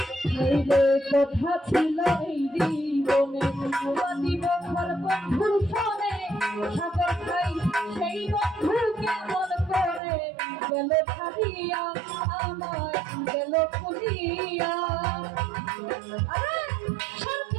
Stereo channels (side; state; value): left; drops out; at 10.0 s